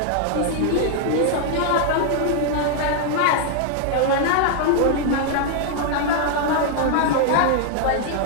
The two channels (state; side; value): different; both; correlation 0.00